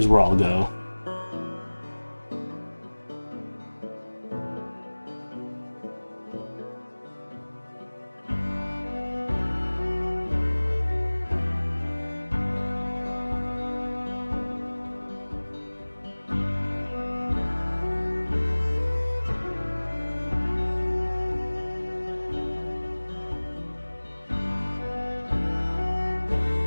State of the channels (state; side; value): inverted; both; correlation -1.00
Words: where I'll go.